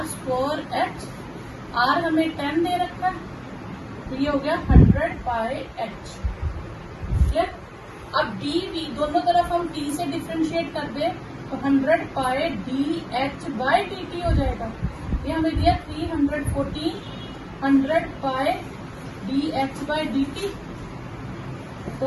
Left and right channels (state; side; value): identical; both; correlation 1.00